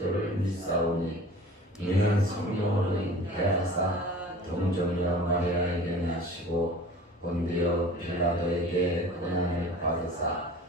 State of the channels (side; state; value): both; normal; correlation 0.42